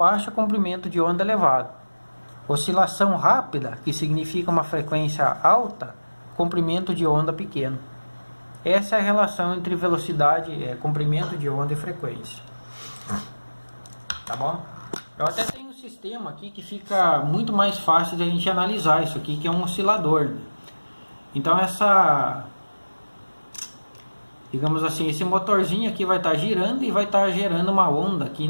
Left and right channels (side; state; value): both; inverted; correlation -1.00